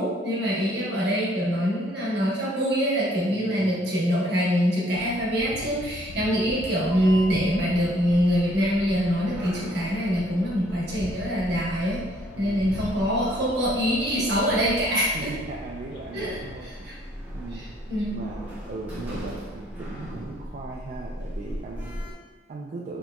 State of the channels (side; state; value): both; normal; correlation 0.63